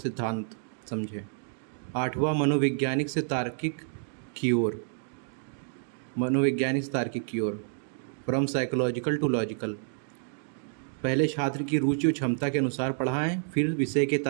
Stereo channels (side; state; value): left; silent; digital silence